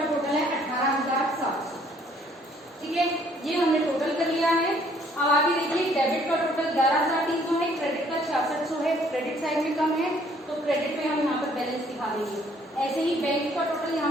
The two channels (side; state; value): both; normal; correlation 0.62